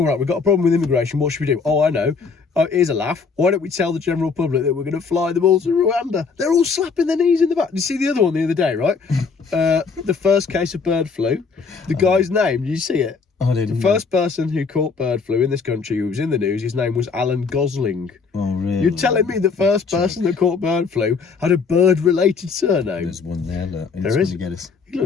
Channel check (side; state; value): right; quieter; 5.1 dB